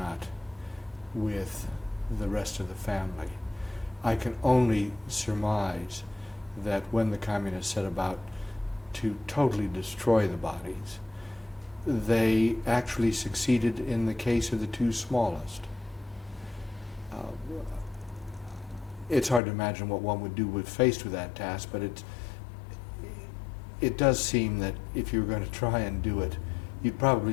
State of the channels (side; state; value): right; drops out; at 19.4 s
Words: with the rest of the family. I can only surmise that when the communists set about to totally destroy the bodies, they actually succeeded in the case of the two smallest. It's hard to imagine what one would do with faced with that task, but it does seem that if you were going to try and do it, you'd